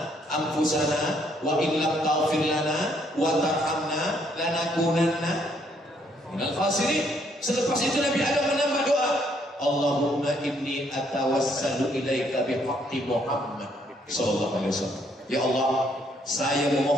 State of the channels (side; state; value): both; normal; correlation 0.69